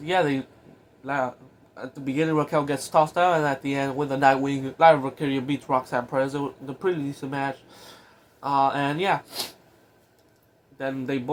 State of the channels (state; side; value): identical; both; correlation 1.00